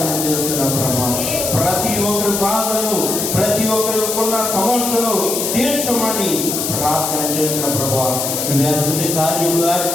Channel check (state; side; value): noise; left; hiss, 2 dB below the sound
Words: చేస్తున్నాం ప్రభా. ప్రతి ఒక్కరి బాధలను, ప్రతి ఒక్కరి ఉన్న సమస్యలను తీర్చమని ప్రార్థన చేస్తున్న ప్రభా. నువ్వు అద్భుత కార్యములు